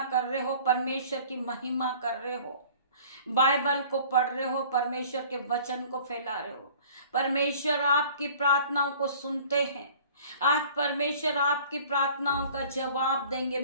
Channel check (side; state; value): both; inverted; correlation -0.49